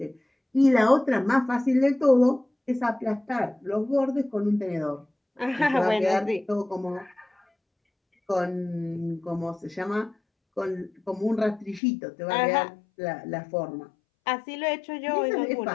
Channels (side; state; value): right; drops out; at 11.8 s